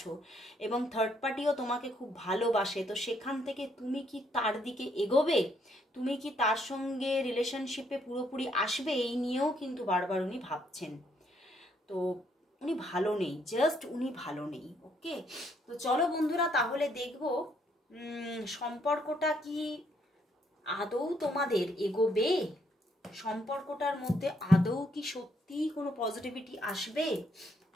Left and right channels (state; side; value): normal; both; correlation 0.71